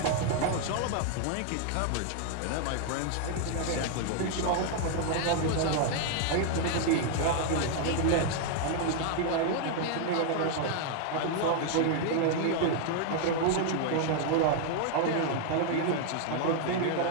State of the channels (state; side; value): different; both; correlation 0.00